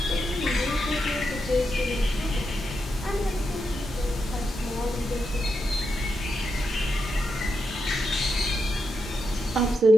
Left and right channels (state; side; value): normal; both; correlation 0.85